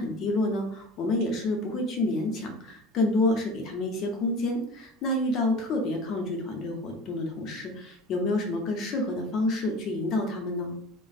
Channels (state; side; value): normal; both; correlation 0.38